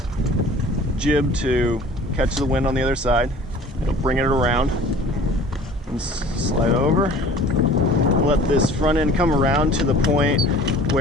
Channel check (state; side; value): normal; both; correlation 0.47